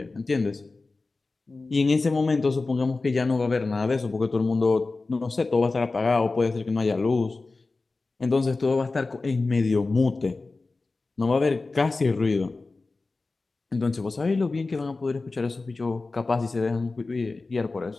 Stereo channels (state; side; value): quieter; right; 3.6 dB